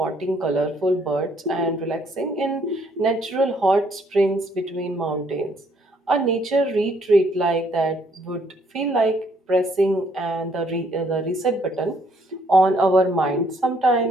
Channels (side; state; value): both; normal; correlation 0.67